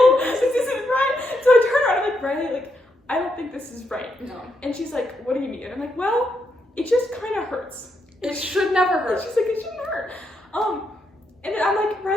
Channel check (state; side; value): normal; both; correlation 0.80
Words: This isn't right. So I turn around, I'm like, Riley, like, I don't think this is right. No. And she's like, what do you mean? And I'm like, well, it just kind of hurts. It should never And hurt. she's like, it shouldn't hurt. And then I'm like,